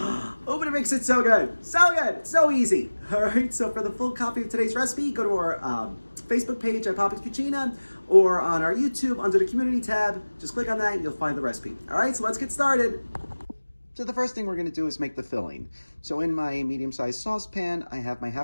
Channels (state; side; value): inverted; both; correlation -1.00